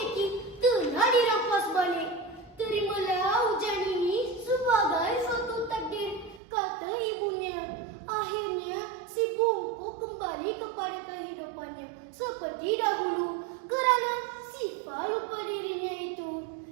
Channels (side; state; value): left; drops out; at 6.4 s